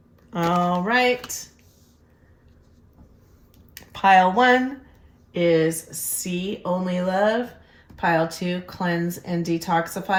All right. Pile 1 is see only love. Pile 2, cleanse and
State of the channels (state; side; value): identical; both; correlation 1.00